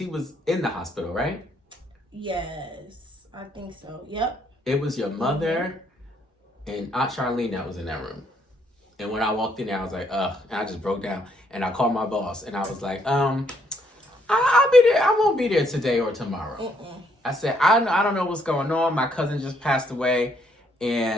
was in the hospital, right? Yes, I think so. Yep. It was your mother and Aunt Charlene that was in that room. And when I walked in there, I was like, ugh. And I just broke down. And I called my boss. And I was like, I'll be there. I won't be there today or tomorrow. I said, I don't know what's going on. My cousin just passed away.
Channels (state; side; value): normal; both; correlation 0.70